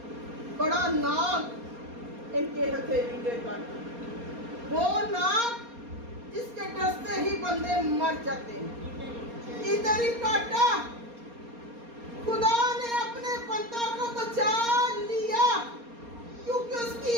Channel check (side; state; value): left; late; 4.3 ms